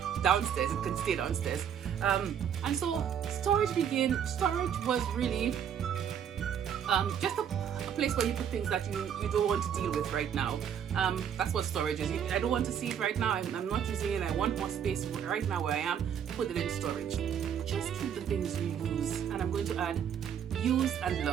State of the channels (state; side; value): quieter; left; 8.6 dB